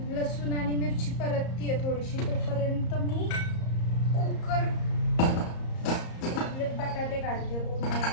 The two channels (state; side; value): late; right; 34 ms